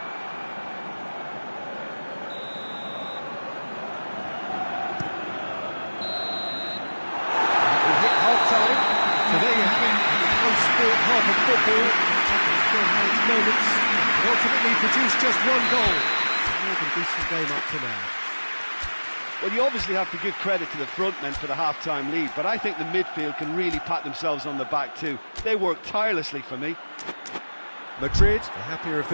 hit half-time, so there you have it. It's one-sport half of football. It's still had its moments, but ultimately produced just one goal. More than decent game up to now. Well, you obviously have to give credit to the front men for the half-time lead, but I think the midfield can really pat themselves on the back too. They worked tirelessly for me. Madrid, the happier of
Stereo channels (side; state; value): both; inverted; correlation -1.00